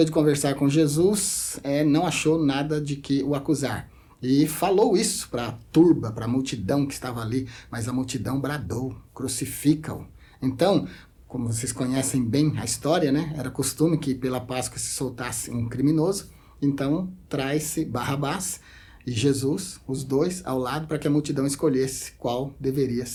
de conversar com Jesus, não achou nada de que o acusar. E falou isso para a turba, para a multidão que estava ali, mas a multidão bradou, crucifica-o. Então, como vocês conhecem bem a história, né? Era costume que pela Páscoa se soltasse um criminoso, então traz-se Barrabás e Jesus, os dois, ao lado, para que a multidão escolhesse qual deveria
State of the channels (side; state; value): both; identical; correlation 1.00